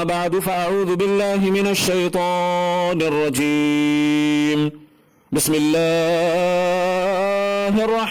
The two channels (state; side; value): identical; both; correlation 1.00